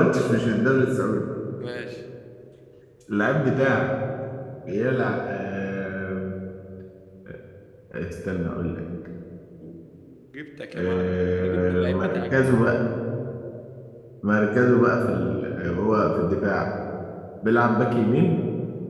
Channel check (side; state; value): both; identical; correlation 1.00